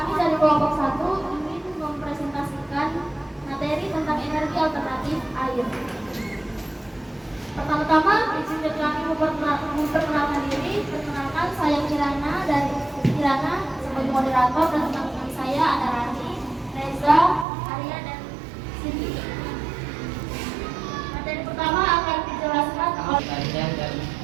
dari kelompok 1 ingin mempresentasikan materi tentang energi alternatif air. Pertama-tama, izinkan kami memperkenalkan diri. Perkenalkan, saya Kira sebagai moderator dan teman-teman saya ada Rani, Reza, Arya, dan Cindy. Materi pertama akan dijelaskan oleh panjang dan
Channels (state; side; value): drops out; left; at 17.4 s